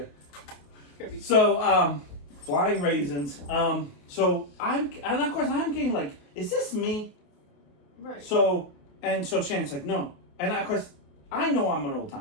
So, flying raisins. So and of course I'm getting like, is this me? Right. So Shannon's like, no. And of course, I know I'm an old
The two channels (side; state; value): right; late; 28 ms